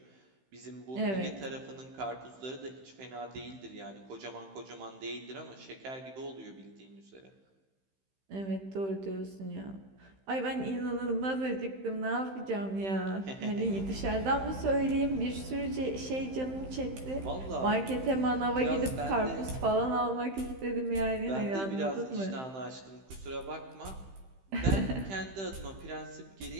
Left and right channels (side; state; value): left; late; 15 ms